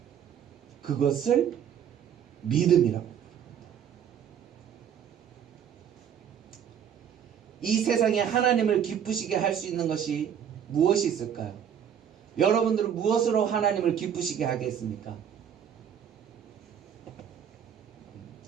그것을 믿음이라고. 이 세상에 하나님을 기쁘시게 할 수 있는 것이 무엇이 있을까요? 여러분들은 무엇으로 하나님을 기쁘시게 하겠습니까?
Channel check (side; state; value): left; quieter; 8.8 dB